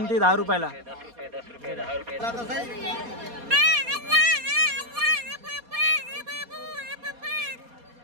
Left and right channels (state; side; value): late; left; 4.2 ms